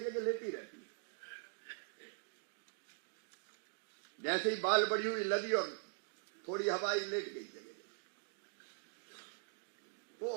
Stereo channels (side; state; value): left; silent; digital silence